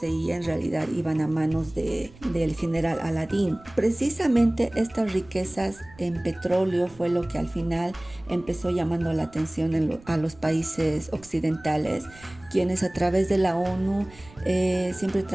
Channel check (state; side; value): noise; right; rumble, 23 dB below the sound